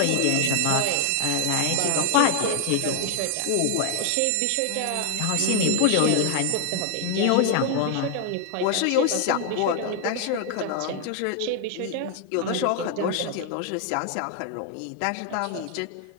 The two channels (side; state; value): both; different; correlation 0.00